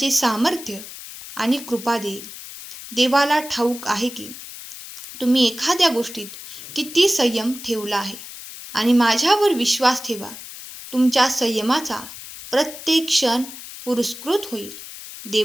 सामर्थ्य आणि कृपा देईल. देवाला ठाऊक आहे की तुम्ही एखाद्या गोष्टीत किती संयम ठेवला आहे आणि माझ्यावर विश्वास ठेवा. तुमच्या संयमाचा प्रत्येक क्षण पुरस्कृत होईल.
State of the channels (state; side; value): noise; left; hiss, 13 dB below the sound